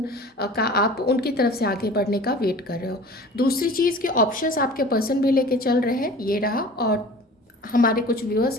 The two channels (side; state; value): both; normal; correlation 0.42